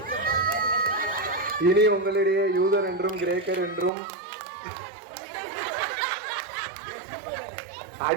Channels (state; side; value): drops out; left; at 3.9 s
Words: இனி உங்களிடையே யூதர் என்றும் கிரேக்கர் என்றும்